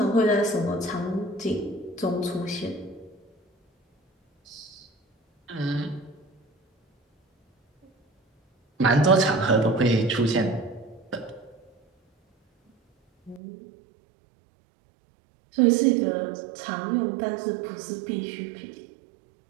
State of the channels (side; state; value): left; drops out; at 13.4 s